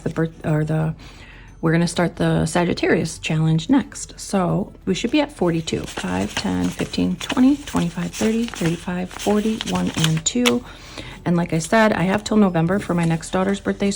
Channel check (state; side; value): identical; both; correlation 1.00